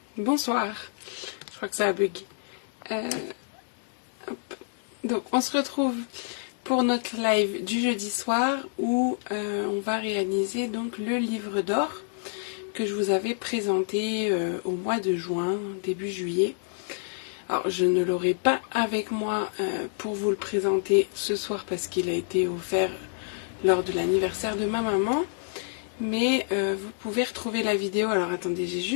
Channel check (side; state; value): right; silent; digital silence